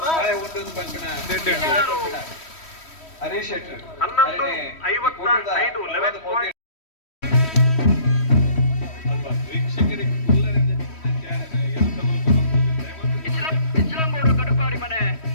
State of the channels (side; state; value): right; late; 3.1 ms